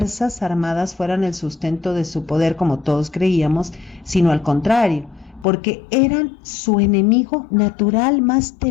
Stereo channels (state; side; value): drops out; right; at 5.5 s